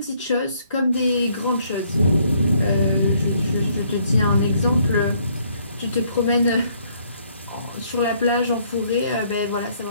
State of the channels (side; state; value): both; inverted; correlation -0.67